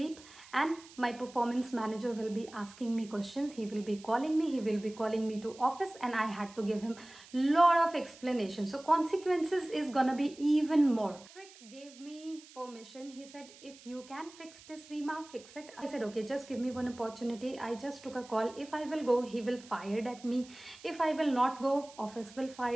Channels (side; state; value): right; noise; hiss, 21 dB below the sound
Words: and my performance manager will be asking me questions. He will be calling me, he will be calling me to office, and I had to give him lot of explanation. So consequences is gonna be even more. Patrick gave me permission. He said, if you can fix this, Reema, fix it. I said, okay, just give me one opportunity. I just took a call. If I will go, he will fire at me. If I will not go, office will